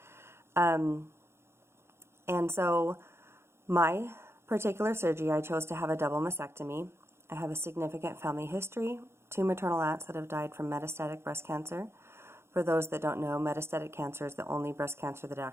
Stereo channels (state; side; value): late; left; 0.12 ms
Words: And so my particular surgery, I chose to have a double mastectomy. I have a significant family history, 2 maternal aunts that have died from metastatic breast cancer. For those that don't know, metastatic cancer is the only breast cancer that